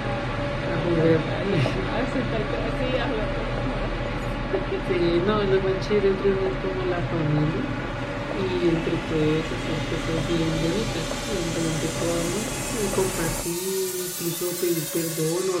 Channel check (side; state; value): both; identical; correlation 1.00